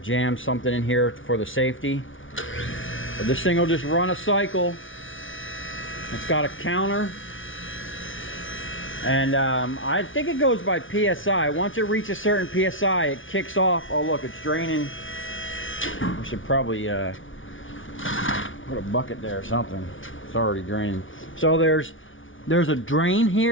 something in here for the safety. But this thing will just run a cycle. It's got a counter. And I think it goes by PSI. Once it reaches a certain PSI, it kicks off. Oh look, it's draining. We should probably put a bucket there or something. It's already draining. So there's a drain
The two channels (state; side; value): late; right; 0.57 ms